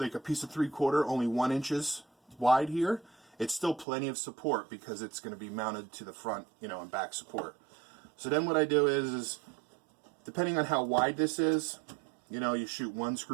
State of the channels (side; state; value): left; drops out; at 3.9 s